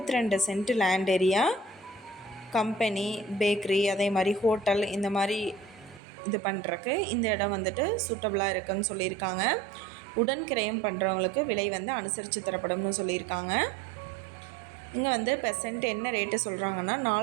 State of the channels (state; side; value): drops out; left; at 6.0 s